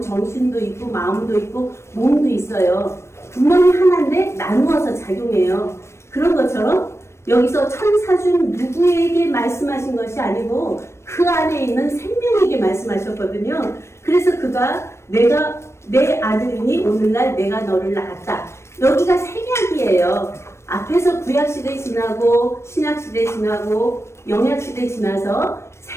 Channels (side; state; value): right; late; 0.13 ms